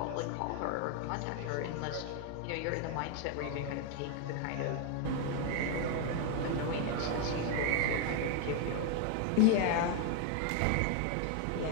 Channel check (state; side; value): different; both; correlation 0.01